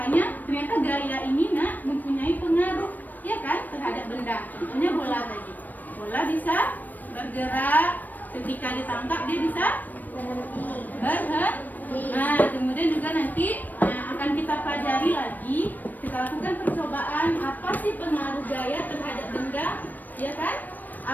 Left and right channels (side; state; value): right; late; 0.087 ms